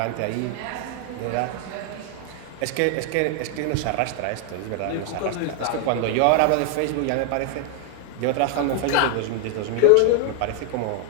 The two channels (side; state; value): both; different; correlation 0.00